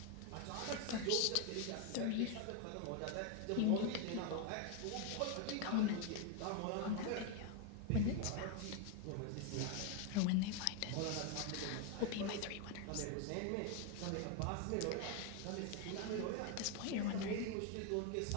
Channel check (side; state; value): both; different; correlation 0.01